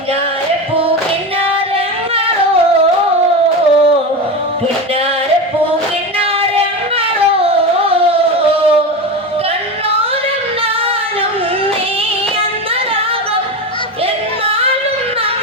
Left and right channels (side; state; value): both; normal; correlation 0.21